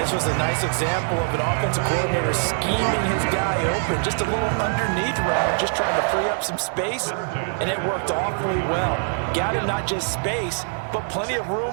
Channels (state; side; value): silent; left; 63 dB below the other